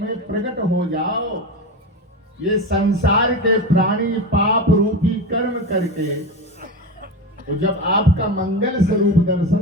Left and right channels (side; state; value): both; normal; correlation 0.22